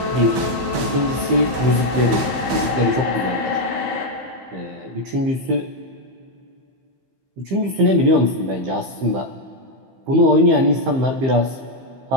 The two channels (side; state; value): left; late; 15 ms